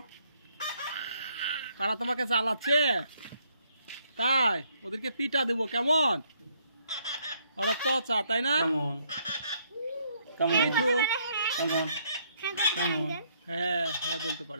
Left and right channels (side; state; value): both; inverted; correlation -0.69